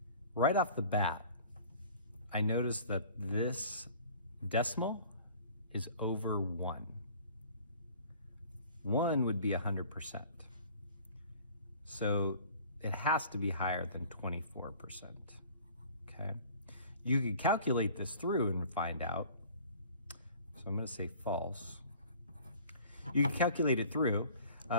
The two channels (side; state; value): both; inverted; correlation -0.48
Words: right off the bat, I noticed that this decimal is over 1. 1 would be 100%. So it has to be higher than 24%. Okay. You can calculate this through and find out. So I'm going to say false. You can calculate it through.